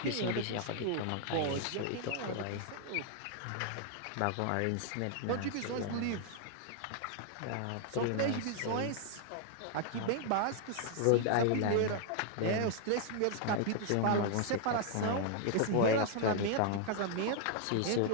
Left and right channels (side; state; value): both; different; correlation 0.00